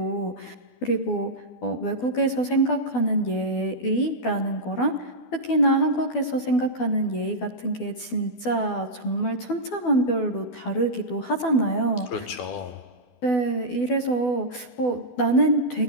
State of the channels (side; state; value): right; late; 12 ms